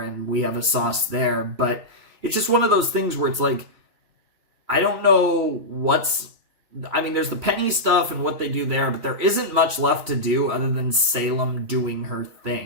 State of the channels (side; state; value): left; late; 3.1 ms